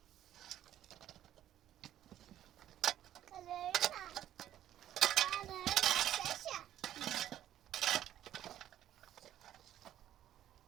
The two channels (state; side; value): quieter; left; 11.8 dB